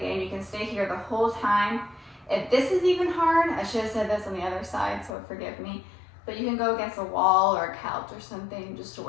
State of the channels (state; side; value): drops out; right; at 5.1 s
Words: you can stay here the whole time. If this is even hard, I should have said this on the other side, so forgive me. But you can go against a wall or a couch or something just to